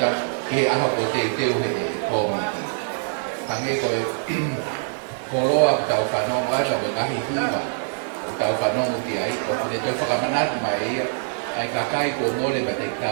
ke he aho ko te teo he kōmiti. Hange koe, koroa ki tau whanongo ai, ka ngahi hiwa, o tau whanongo ki ai, o kune toi whakamanatu mai ia, ai kakai ko mōre ma te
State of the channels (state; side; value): silent; left; 55 dB below the other